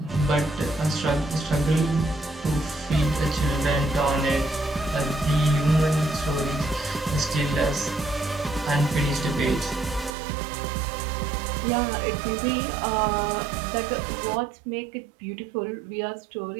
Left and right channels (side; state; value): left; drops out; at 10.1 s